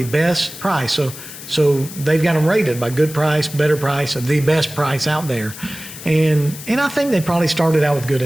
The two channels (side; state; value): left; noise; hiss, 13 dB below the sound